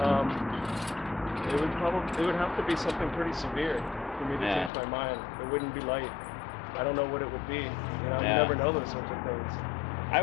It would have to be something pretty severe for me to change my mind. It wouldn't be light. I don't know what it would be. You know, you never know those sorts of things. I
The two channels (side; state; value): right; drops out; at 4.7 s